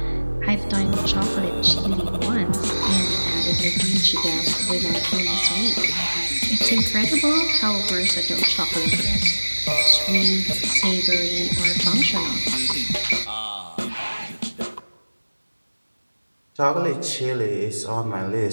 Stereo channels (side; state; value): both; inverted; correlation -1.00